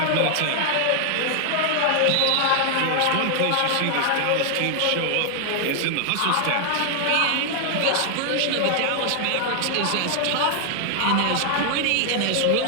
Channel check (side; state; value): both; different; correlation 0.00